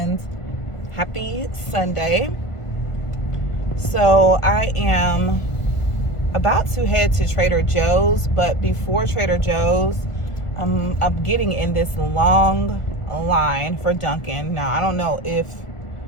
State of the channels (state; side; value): late; right; 1.5 ms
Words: happy Sunday. So I am about to head to Trader Joe's, but before Trader Joe's, I'm getting in this long line for Dunkin'. Now I don't know if